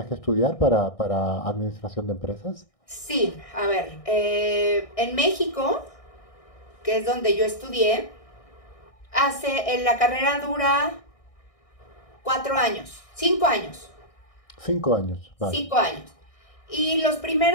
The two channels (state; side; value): late; right; 1.6 ms